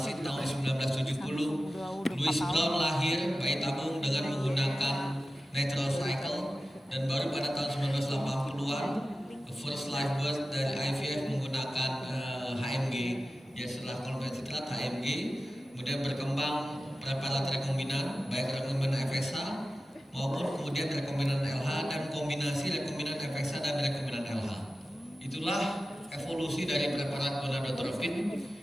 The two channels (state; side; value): normal; both; correlation 0.94